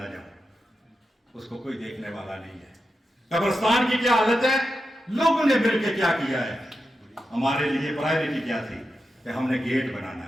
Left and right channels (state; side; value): normal; both; correlation 0.89